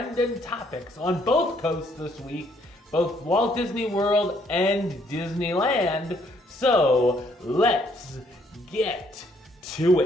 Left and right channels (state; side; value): normal; both; correlation 0.67